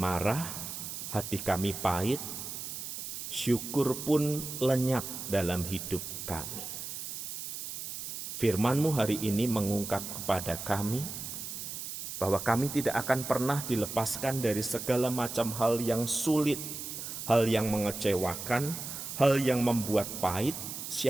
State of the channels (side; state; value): right; noise; hiss, 7 dB below the sound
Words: hati kami pahit, syukur pun lenyap dalam hidup kami. Firman-Mu hari ini mengungkap kepada kami bahwa kami tidak akan pernah dilepaskan dari segala macam hal yang sulit, hal yang mengecewakan, hal yang membuat pahit,